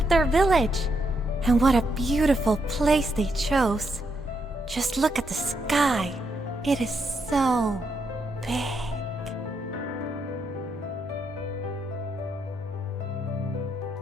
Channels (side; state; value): both; normal; correlation 0.79